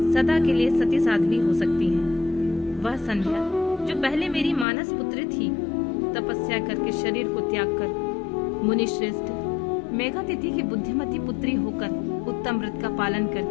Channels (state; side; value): drops out; right; at 4.7 s